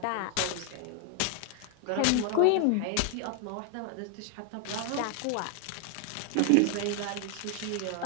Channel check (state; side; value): different; both; correlation 0.01